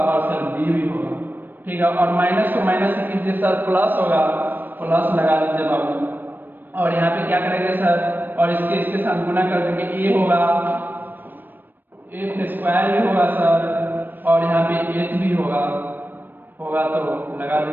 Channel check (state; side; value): late; left; 0.092 ms